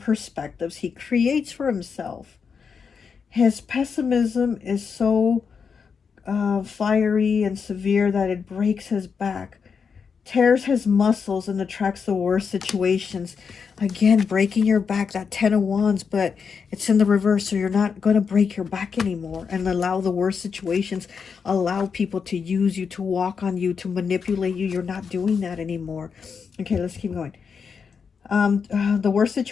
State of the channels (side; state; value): right; quieter; 6.0 dB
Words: he creates for himself. His pessimism is so fiery and severe that it breaks his back, tears his muscles, and attracts the worst situations. Again, breaking your back, that 10 of Wands, but it's in the reverse, so you're not going to break your back anymore and allow the worst situations, allow people to use you, to walk on you, to manipulate you. You're not doing that anymore. Okay, let's keep going. The worst